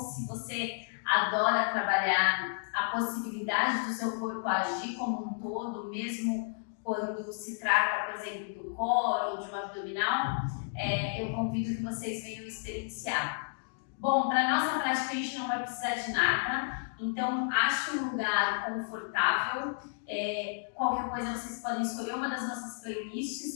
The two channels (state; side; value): silent; right; digital silence